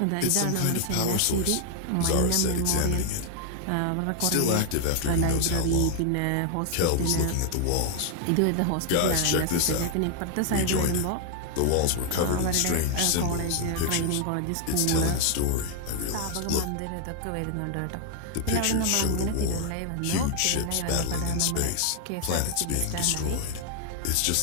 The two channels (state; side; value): different; both; correlation 0.00